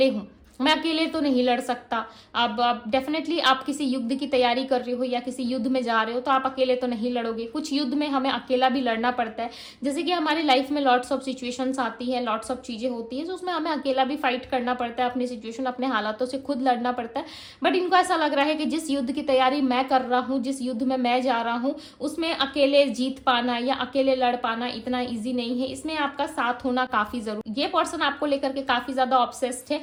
हूं, मैं अकेले तो नहीं लड़ सकता। अब डेफिनेटली आप किसी युद्ध की तैयारी कर रहे हो या किसी युद्ध में जा रहे हो तो आप अकेले तो नहीं लड़ोगे। कुछ युद्ध में हमें अकेला भी लड़ना पड़ता है, जैसे कि हमारी लाइफ में लॉट्स ऑफ सिचुएशंस आती है, लॉट्स ऑफ चीजें होती है, तो उसमें हमें अकेला भी फाइट करना पड़ता है, अपनी सिचुएशन, अपने हालातों से खुद लड़ना पड़ता है। बट इनको ऐसा लग रहा है कि जिस युद्ध की तैयारी मैं कर रहा हूँ, जिस युद्ध में मैं जा रहा हूँ, उसमें अकेले जीत पाना या अकेले लड़ पाना इतना ईजी नहीं है, इसमें आपका साथ होना काफी जरूरी। ये पर्सन आपको लेकर के काफी ज्यादा ऑब्सेस्ड है,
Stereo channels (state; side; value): identical; both; correlation 1.00